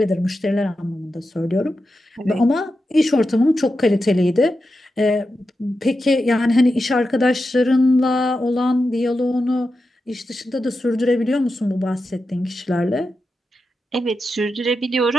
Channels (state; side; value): normal; both; correlation 0.89